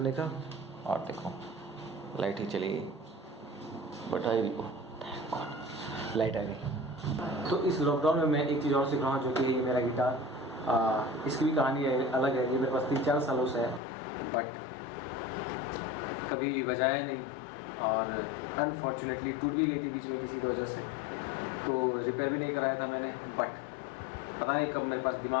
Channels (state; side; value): drops out; right; at 13.8 s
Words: का और देखो लाइट ही चली गई, बट आई लाइट आ गई। तो इस लॉकडाउन में मैं एक चीज़ और सीख रहा हूँ जो कि मेरा गिटार, इसकी भी कहानी है, अलग है। ये मेरे पास 3-4 सालों से है बट कभी बजाया नहीं और अनफॉर्चुनेटली टूट भी गई थी बीच में किसी की वजह से, तो रिपेयर भी नहीं कराया था मैंने। बट पता नहीं कब मेरे पास